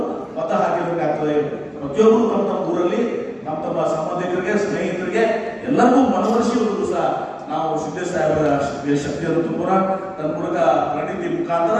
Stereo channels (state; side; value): identical; both; correlation 1.00